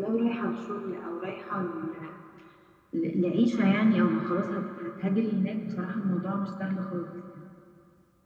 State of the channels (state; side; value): identical; both; correlation 1.00